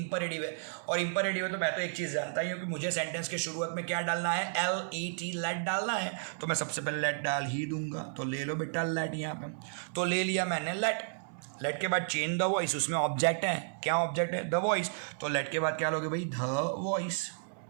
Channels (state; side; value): silent; left; 56 dB below the other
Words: है। और इंपरेटिव है तो मैं तो एक चीज़ जानता ही हूँ कि मुझे सेंटेंस के शुरुआत में क्या डालना है, LET लेट डालना है, तो मैं सबसे पहले लेट डाल ही दूंगा। तो ले लो बेटा लेट, यहाँ पे तो ले लिया मैंने लेट के बाद चेंज द वॉइस, उसमें ऑब्जेक्ट है, क्या ऑब्जेक्ट है, द वॉइस। तो लेट के बाद क्या लोगे भाई, the voice,